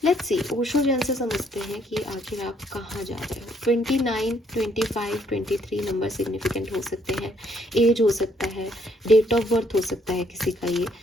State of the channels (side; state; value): both; normal; correlation 0.69